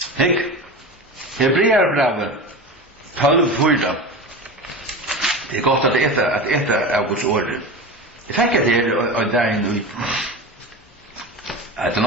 Hek. Hebreerbrevet 12:4. Det är gott att äta av Guds ord. Jag tänker att det är där nu. Att det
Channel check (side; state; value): both; normal; correlation 0.27